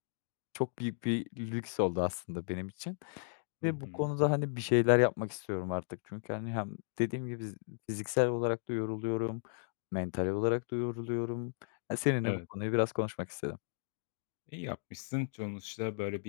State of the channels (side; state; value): right; silent; digital silence